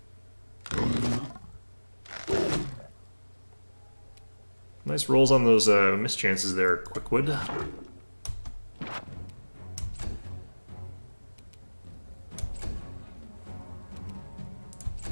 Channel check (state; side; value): inverted; both; correlation -1.00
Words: Nice rolls on those mischances there, Quickwood.